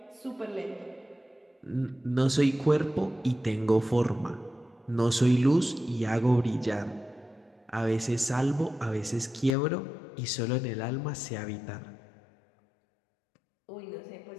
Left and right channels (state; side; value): drops out; right; at 9.6 s